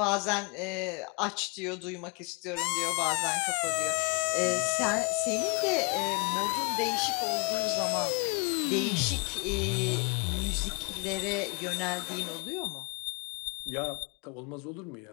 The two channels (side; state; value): right; quieter; 33.2 dB